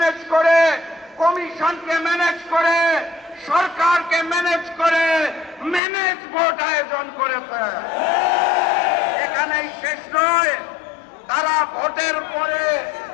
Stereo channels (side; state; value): right; drops out; at 5.8 s